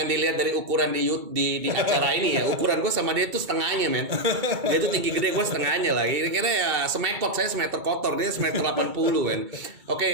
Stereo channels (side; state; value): left; late; 2.3 ms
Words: dilihat dari ukuran di acara ini ya. Ukuran gue sama dia tuh setengahnya, men. Dia tuh tinggi gede, gue setengahnya lah. Kira-kira ya semekot, saya semeter kotor, dia semeter 80, men.